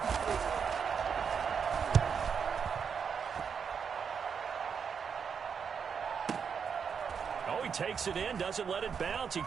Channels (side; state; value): left; quieter; 6.6 dB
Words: Oh, he takes it in, doesn't let it bounce. He